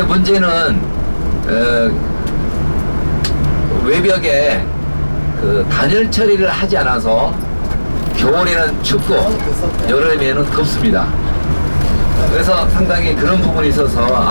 문제는 외벽에 그 단열 처리를 하지 않아서 겨울에는 춥고 여름에는 덥습니다. 그래서 상당히 그런 부분이 있어서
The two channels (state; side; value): inverted; both; correlation -1.00